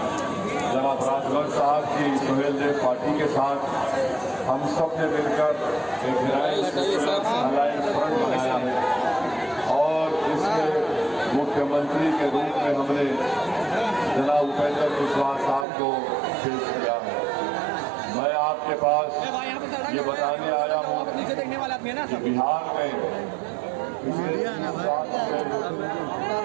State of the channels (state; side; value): drops out; left; at 15.7 s